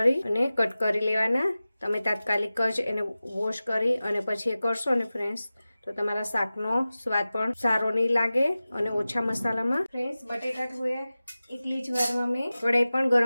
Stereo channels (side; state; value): both; inverted; correlation -0.96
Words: અને કટ કરી લેવાના। તમે તાત્કાલિક જ એને વોશ કરી અને પછી એ કરશો ને ફ્રેન્ડ્સ, તો તમારા શાકનો સ્વાદ પણ સારો નહીં લાગે અને ઓછા મસાલામાં। ફ્રેન્ડ્સ, બટેટા ધોયા એટલી જ વારમાં મેં કઢાઈ પણ